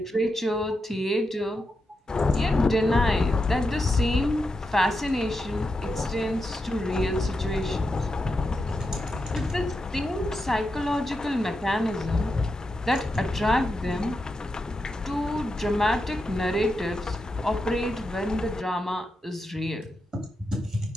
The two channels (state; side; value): normal; both; correlation 0.87